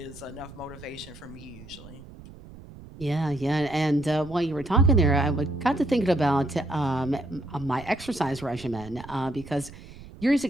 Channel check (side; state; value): right; noise; rumble, 17 dB below the sound